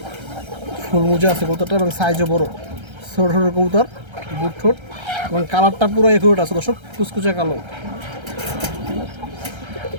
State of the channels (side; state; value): left; late; 1.3 ms